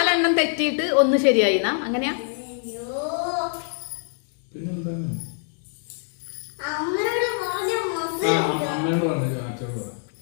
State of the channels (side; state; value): right; silent; 62 dB below the other